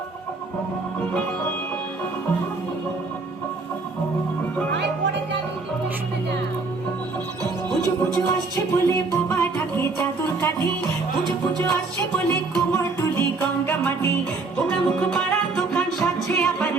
বলে বোবা ঢাকে চাদর কাঠি, পুজো পুজো আসছে বলে কোমর তুলি গঙ্গা মাটি। পোড়া মুখ পাড়ার দোকান সাজছে আবার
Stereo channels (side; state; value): left; quieter; 3.8 dB